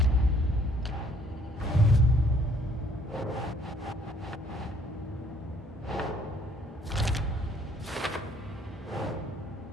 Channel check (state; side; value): normal; both; correlation 0.61